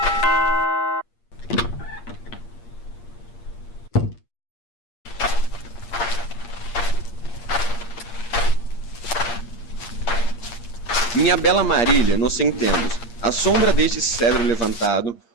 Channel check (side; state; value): right; late; 8.6 ms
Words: Minha bela Marília, nos sentemos, à sombra deste cedro levantado,